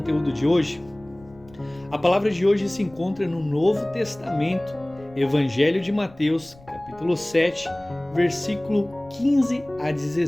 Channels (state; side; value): noise; left; rumble, 24 dB below the sound